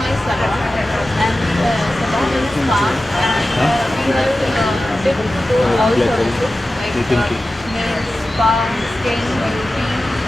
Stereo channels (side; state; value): both; normal; correlation 0.94